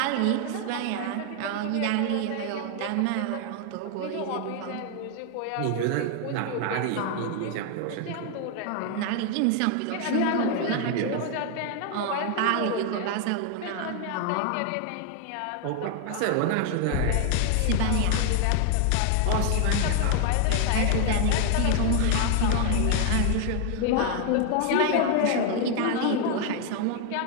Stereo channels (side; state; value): both; different; correlation 0.00